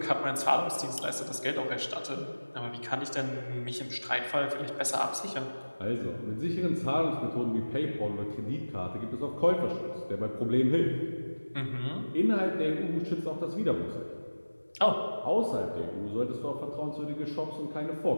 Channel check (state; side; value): inverted; both; correlation -1.00